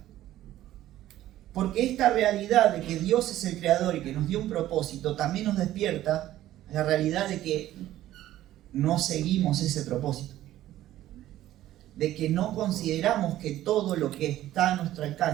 Porque esta realidad de que Dios es el creador y que nos dio un propósito también nos despierta la realidad de que no seguimos ese propósito, de que no consideramos que todo lo que está a nuestro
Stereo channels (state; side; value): quieter; left; 13.8 dB